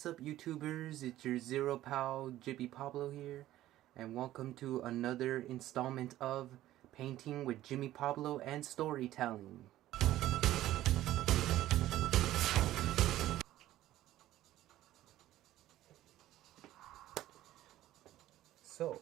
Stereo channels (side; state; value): left; quieter; 14.4 dB